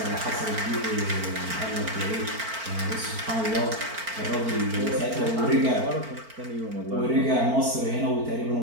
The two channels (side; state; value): left; late; 4.4 ms